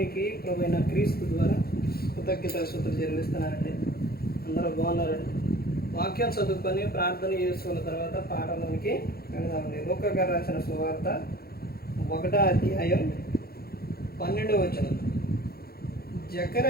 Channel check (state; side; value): late; right; 0.45 ms